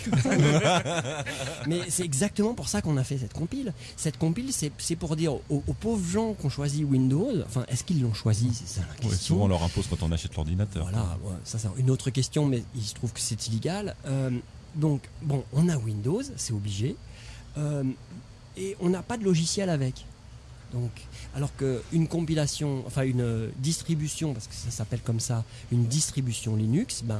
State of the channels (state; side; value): identical; both; correlation 1.00